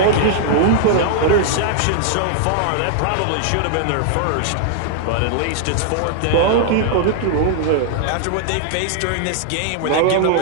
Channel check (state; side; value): different; both; correlation -0.01